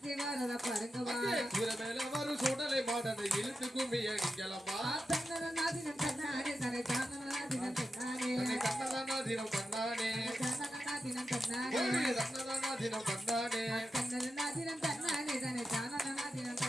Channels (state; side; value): normal; both; correlation 0.89